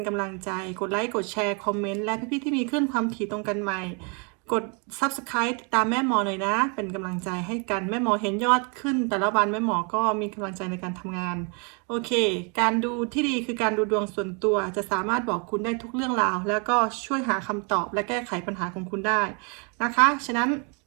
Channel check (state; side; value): quieter; left; 35.5 dB